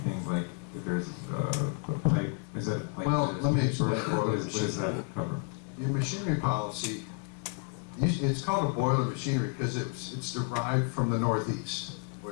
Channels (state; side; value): quieter; right; 38.0 dB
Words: like if there's a pipe. Is that like? Well, let me explain What does that cover? Your machinery policy, it's called a boiler machinery because it's derived from the Northeast,